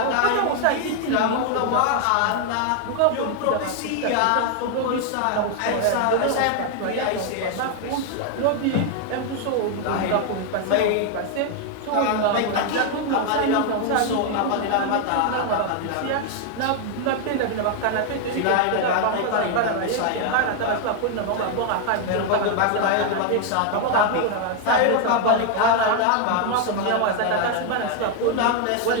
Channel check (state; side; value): different; both; correlation 0.00